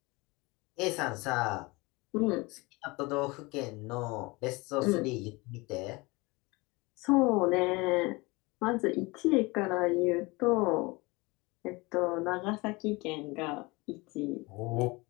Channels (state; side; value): quieter; right; 24.5 dB